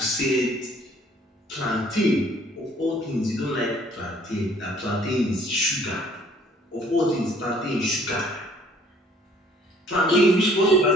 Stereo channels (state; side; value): normal; both; correlation 0.58